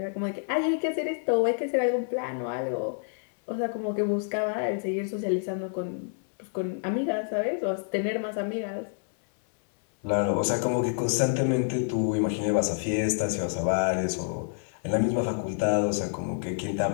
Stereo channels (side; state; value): right; silent; digital silence